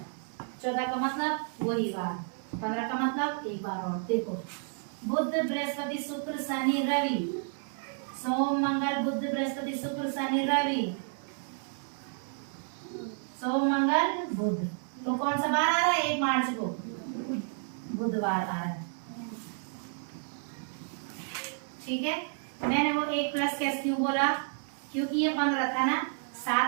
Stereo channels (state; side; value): silent; left; 57 dB below the other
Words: 14 का मतलब वही बार, 15 का मतलब एक बार और। देखो, बुध बृहस्पति शुक्र शनि रवि, सोम मंगल बुध बृहस्पति शुक्र शनि रवि, सोम मंगल बुध। तो कौन सा बार आ रहा है? 1 मार्च को बुधवार आ रहा है। ठीक है, मैंने वो 1 प्लस कैसे क्यों बोला? क्योंकि ये 15 था ना,